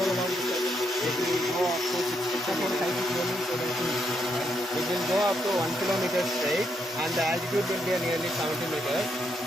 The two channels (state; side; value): normal; both; correlation 0.78